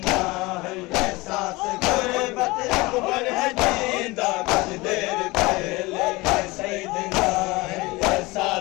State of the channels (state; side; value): quieter; right; 22.4 dB